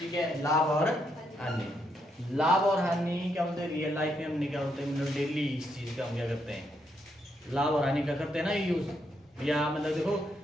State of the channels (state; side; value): normal; both; correlation 0.77